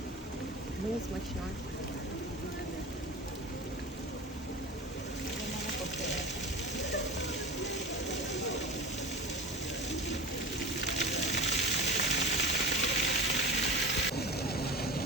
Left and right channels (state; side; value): normal; both; correlation 0.33